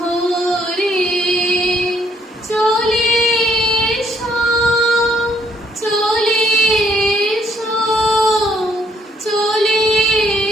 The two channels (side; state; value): both; normal; correlation 0.69